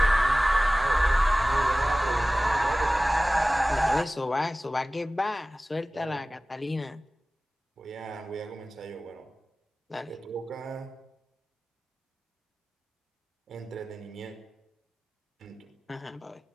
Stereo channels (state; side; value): normal; both; correlation 0.97